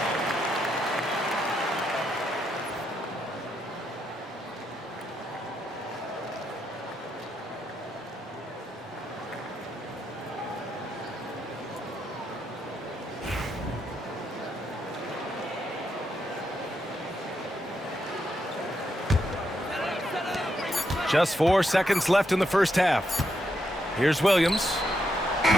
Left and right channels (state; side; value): normal; both; correlation 0.80